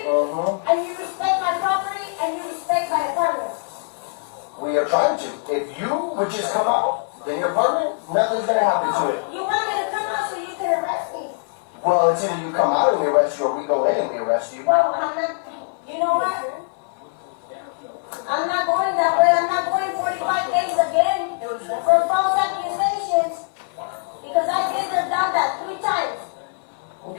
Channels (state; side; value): silent; right; digital silence